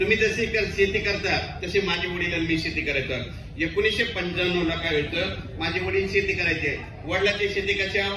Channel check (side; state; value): both; identical; correlation 1.00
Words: तुम्ही जशी शेती करता तशी माझे वडील आणि मी शेती करायचं। 1995 ला काय होतं, माझे वडील शेती करायचे। वडिलांची शेती कशा,